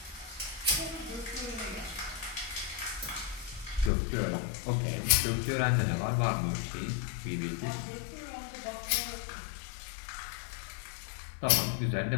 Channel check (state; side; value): drops out; right; at 3.9 s